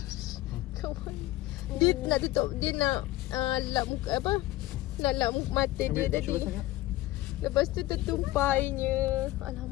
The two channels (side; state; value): right; quieter; 16.9 dB